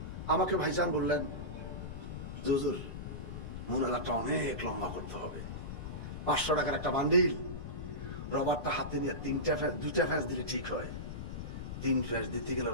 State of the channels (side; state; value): left; noise; rumble, 7 dB below the sound